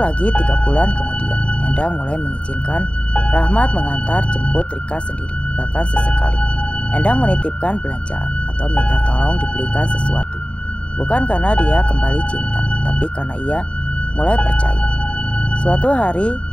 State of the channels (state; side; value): late; right; 0.060 ms